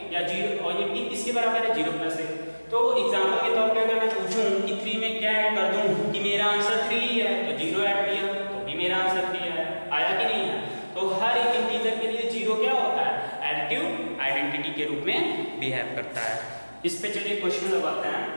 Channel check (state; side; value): inverted; both; correlation -1.00